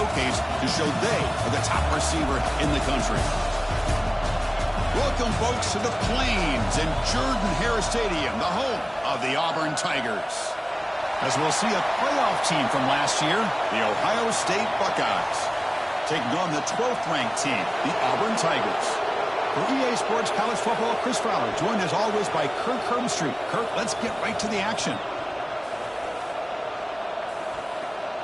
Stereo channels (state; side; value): identical; both; correlation 1.00